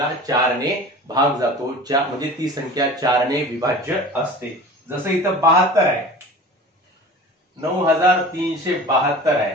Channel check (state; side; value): normal; both; correlation 0.38